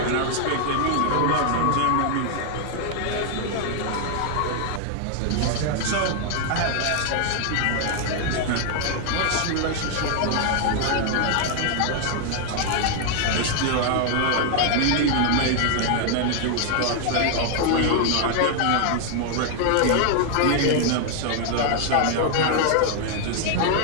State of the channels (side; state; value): both; different; correlation 0.00